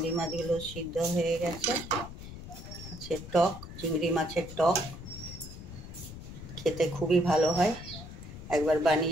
মাছগুলো সিদ্ধ হয়ে গেছে। আছে টক, চিংড়ি মাছের টক খেতে খুবই ভালো হয়। একবার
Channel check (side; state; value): left; noise; rumble, 12 dB below the sound